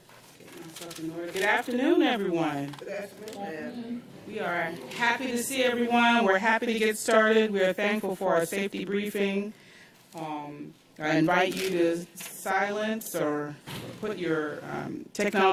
Get myself in order. Good afternoon, everyone. Good afternoon. We are happy to see everyone. We're happy to get started. We are thankful for our safety briefing. I invite you to silence or put your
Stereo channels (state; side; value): identical; both; correlation 1.00